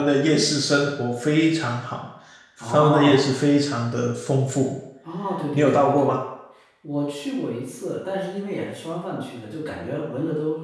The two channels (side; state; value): both; identical; correlation 1.00